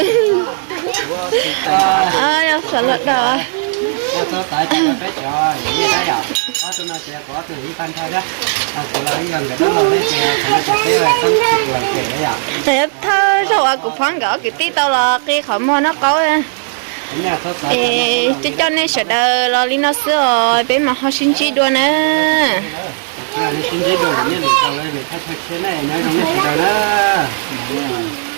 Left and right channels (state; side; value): silent; left; digital silence